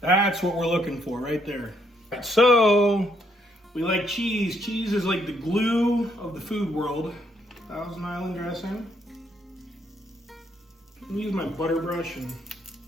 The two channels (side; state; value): both; normal; correlation 0.72